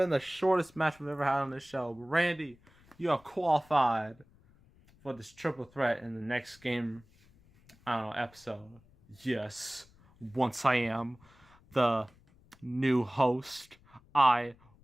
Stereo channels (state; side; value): noise; left; rumble, 28 dB below the sound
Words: the shortest match we've ever had on this show. But Randy, you are qualified for this triple threat in the next game, I don't know, episode. Yes, once I am the new host, I